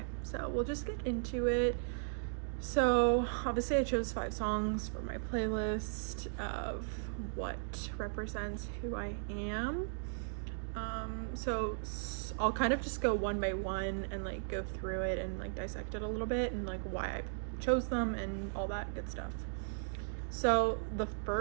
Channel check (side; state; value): left; silent; digital silence